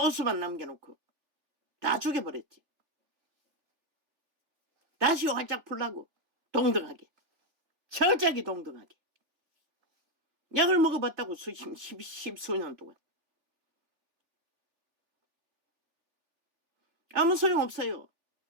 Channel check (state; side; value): late; left; 3.4 ms